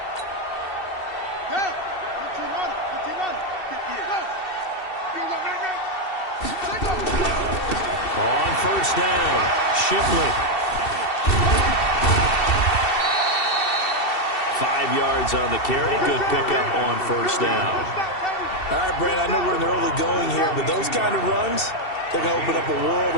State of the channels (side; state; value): right; late; 2.7 ms